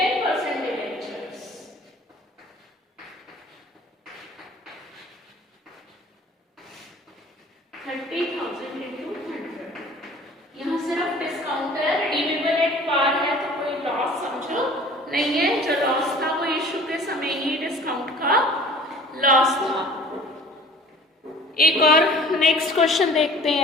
debentures। यहाँ सिर्फ डिस्काउंट है, रिडीमेबल एट पार है तो कोई लॉस समझो नहीं है। जो लॉस था वो इशू के समय ही डिस्काउंट का लॉस था। एक और नेक्स्ट क्वेश्चन देखते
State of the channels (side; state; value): both; normal; correlation 0.47